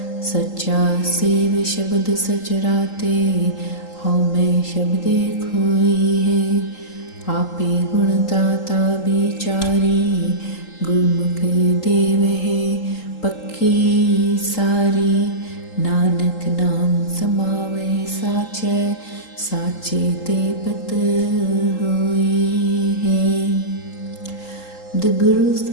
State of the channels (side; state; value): right; late; 3.8 ms